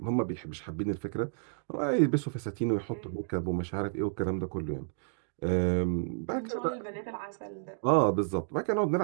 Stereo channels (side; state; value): left; silent; digital silence